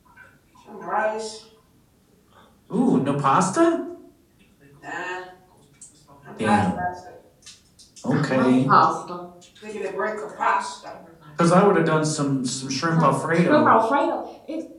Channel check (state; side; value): identical; both; correlation 1.00